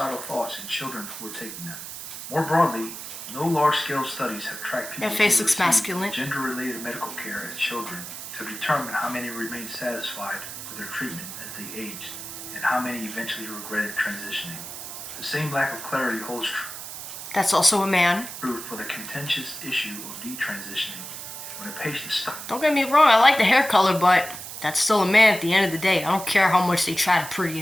thoughts in children who were taking them. More broadly, no large-scale studies have tracked people That face looks masculine. gender-related medical care as children to determine how many remained satisfied with their treatment as they aged and how many eventually regretted transitioning. The same lack of clarity holds true. That's also a man. True for the contentious issue of detransitioning. When a patient stops. Don't get me wrong, I like the hair color, but that's still a man at the end of the day. I don't care how much they try to pretty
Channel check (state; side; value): noise; right; hiss, 10 dB below the sound